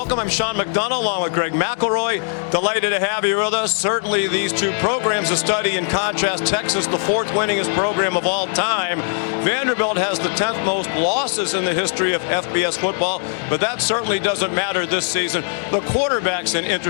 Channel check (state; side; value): silent; right; 63 dB below the other